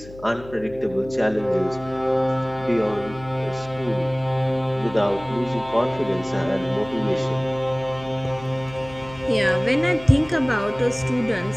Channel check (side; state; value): left; noise; hum, 18 dB below the sound